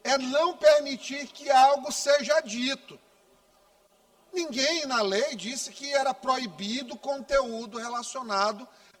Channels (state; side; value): identical; both; correlation 1.00